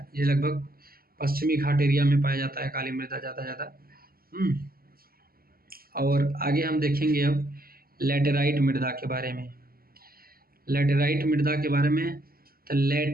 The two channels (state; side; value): late; left; 0.43 ms